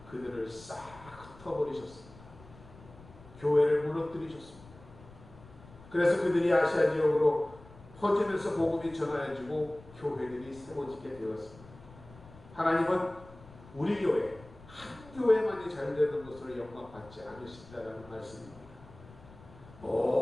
그들을 싹 흩어버리셨습니다. 교회를 무너뜨리셨습니다. 그래서 그들이 아시아 지역으로 퍼지면서 복음이 전하여지고 교회들이 세워지게 되었습니다. 하나님은 우리 교회, 한 교회만이 잘 되는 것으로 영광받지 않으신다는 말씀입니다.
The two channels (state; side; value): noise; left; rumble, 21 dB below the sound